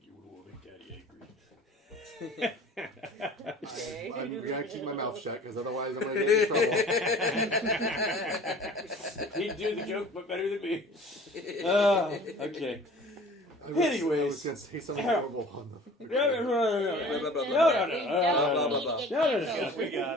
You will make Daddy angry. I'm gonna keep my mouth shut because otherwise I'm gonna get in trouble. He'd do the joke, but better than me. Okay. I was Anyways. gonna say something horrible on the. No. We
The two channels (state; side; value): normal; both; correlation 0.45